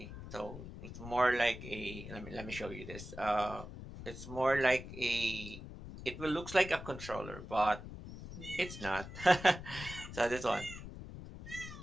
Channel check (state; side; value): noise; left; rumble, 11 dB below the sound